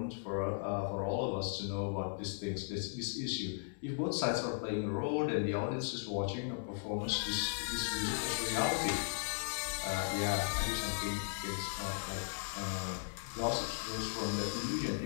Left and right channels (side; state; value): right; silent; digital silence